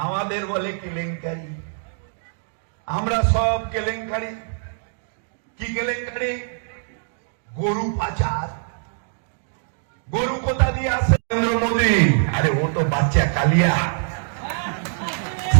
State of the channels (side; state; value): left; silent; digital silence